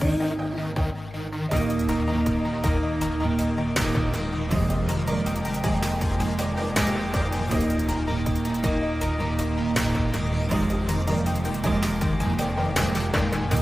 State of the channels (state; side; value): normal; both; correlation 0.95